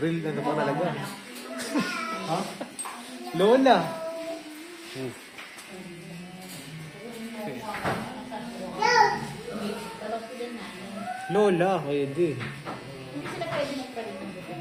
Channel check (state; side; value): identical; both; correlation 1.00